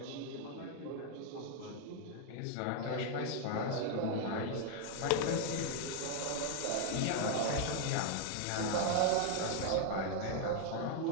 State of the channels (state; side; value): different; both; correlation 0.00